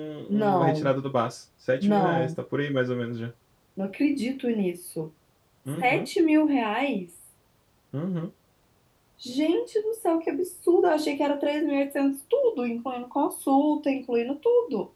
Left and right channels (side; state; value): both; identical; correlation 1.00